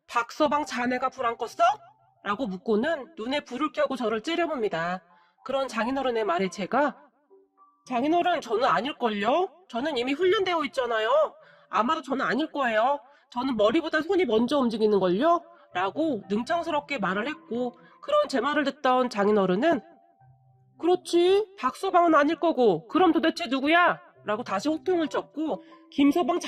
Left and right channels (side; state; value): both; identical; correlation 1.00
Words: 박서방 자네가 불 안 껐어? 라고 묻고는 눈에 불을 켜고 저를 째려봅니다. 그런 장인어른의 말에 제가 장인어른 저는 아닐걸요? 저는 이미 훈련되어 있잖아요. 아마도 저는 아닐 거예요. 저는 머리보다 손이 먼저 움직이는걸요? 라고 능청스럽게 말을 했고 그런 제 말을 듣던 장인어른은 그렇지 박서방은 아닐 거고 그럼 도대체 누구야? 라고 다시 호통을 쳤고 김서방